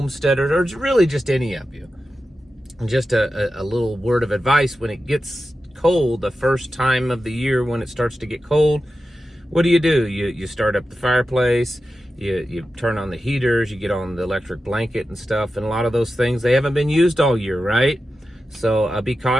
or really just any of you, just a little word of advice: when it gets cold, the first time of the year when it starts to get cold, what do? You start up the fireplace. You turn on the heaters, you get on the electric blanket and stuff, and a lot of those things, they haven't been used all year, right? So be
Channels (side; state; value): both; normal; correlation 0.92